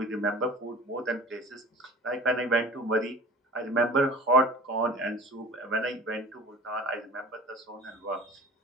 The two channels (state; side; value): normal; both; correlation 0.41